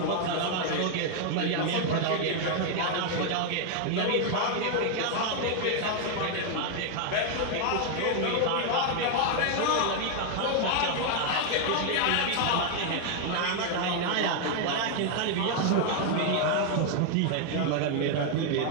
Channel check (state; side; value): different; both; correlation 0.00